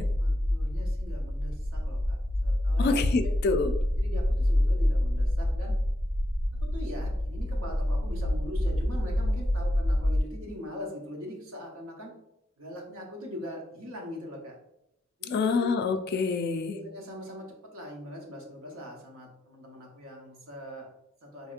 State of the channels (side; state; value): both; normal; correlation 0.85